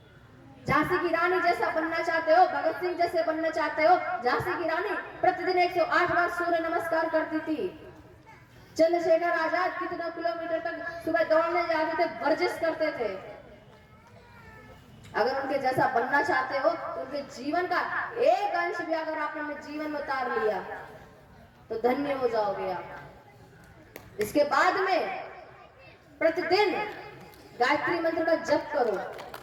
झांसी की रानी जैसा बनना चाहते हो, भगत सिंह जैसे बनना चाहते हो। झांसी की रानी प्रतिदिन 108 बार सूर्य नमस्कार करती थी। चंद्रशेखर आजाद कितना किलोमीटर तक सुबह दौड़ने जाते थे, वर्जिश करते थे। अगर उनके जैसा बनना चाहते हो तो उनके जीवन का एक अंश भी अगर आपने अपने जीवन में उतार लिया तो धन्य हो जाओगे आप। इसके बाद में प्रतिदिन गायत्री मंत्र का जप करो।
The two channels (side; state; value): both; identical; correlation 1.00